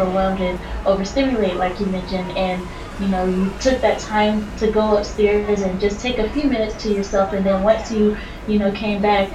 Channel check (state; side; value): identical; both; correlation 1.00